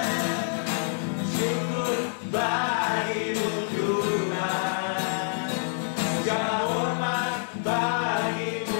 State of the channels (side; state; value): right; silent; digital silence